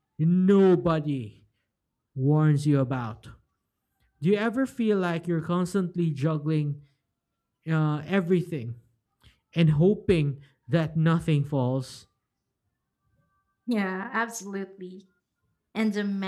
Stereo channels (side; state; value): both; identical; correlation 1.00